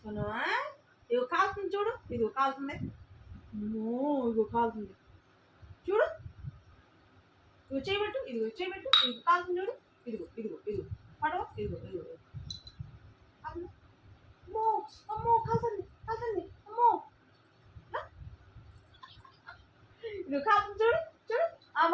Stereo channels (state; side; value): identical; both; correlation 1.00